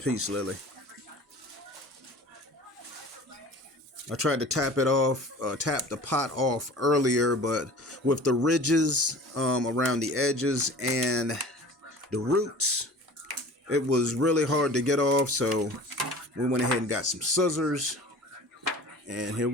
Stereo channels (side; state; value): both; normal; correlation 0.42